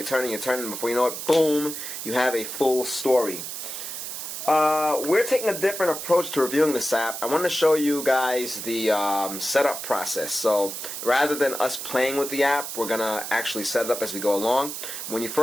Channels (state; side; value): noise; right; hiss, 7 dB below the sound